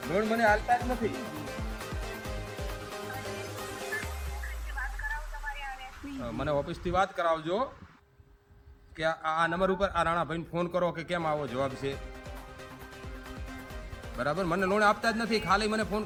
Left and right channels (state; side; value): identical; both; correlation 1.00